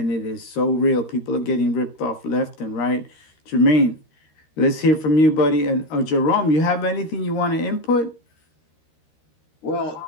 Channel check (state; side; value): late; right; 13 ms